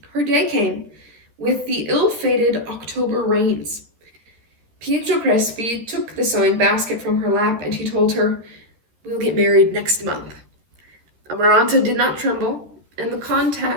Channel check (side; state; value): left; late; 13 ms